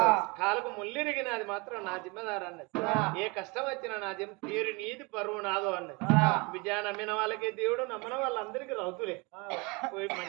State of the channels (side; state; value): left; quieter; 27.9 dB